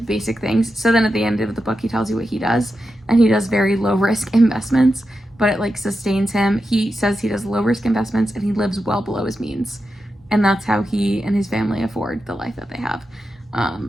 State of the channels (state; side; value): normal; both; correlation 0.89